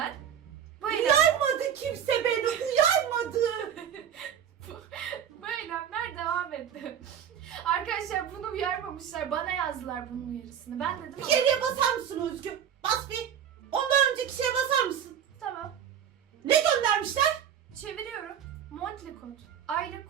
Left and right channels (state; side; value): quieter; left; 9.0 dB